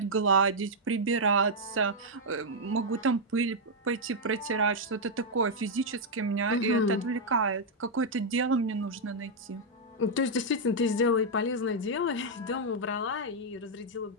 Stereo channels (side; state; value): both; normal; correlation -0.03